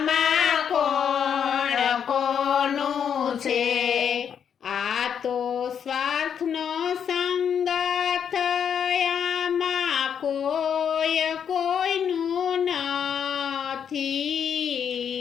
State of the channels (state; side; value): quieter; right; 7.9 dB